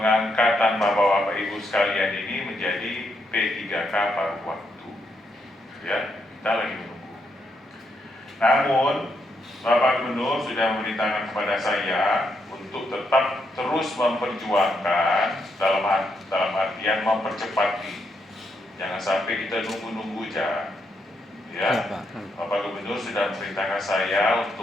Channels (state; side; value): normal; both; correlation 0.79